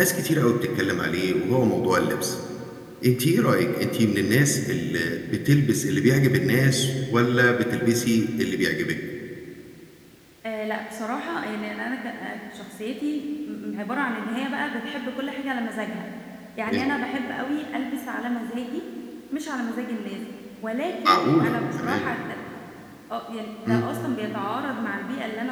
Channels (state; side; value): identical; both; correlation 1.00